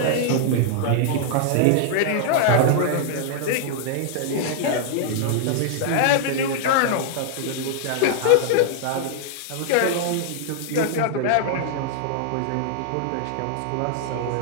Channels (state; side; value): different; both; correlation -0.01